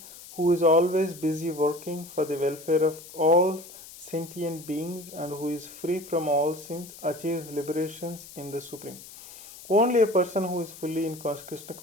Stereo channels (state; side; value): noise; left; hiss, 17 dB below the sound